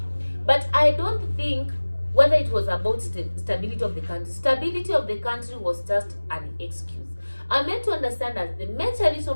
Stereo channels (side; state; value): both; inverted; correlation -1.00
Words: But I don't think whether it was about stability of the country. Stability of the country was just an excuse. I'm meant to understand that the major reason